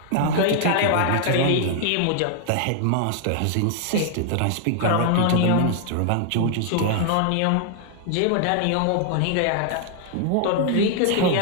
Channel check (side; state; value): both; different; correlation 0.00